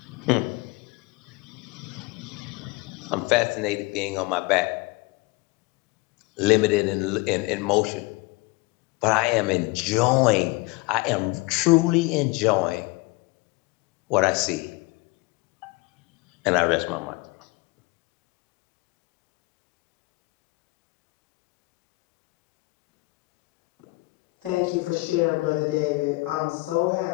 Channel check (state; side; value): quieter; right; 23.9 dB